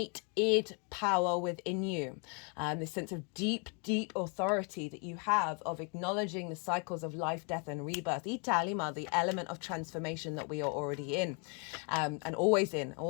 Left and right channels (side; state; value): right; quieter; 36.5 dB